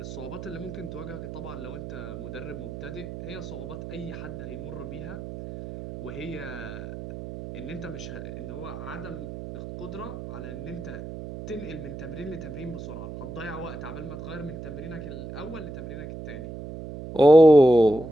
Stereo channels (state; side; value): noise; right; hum, 9 dB below the sound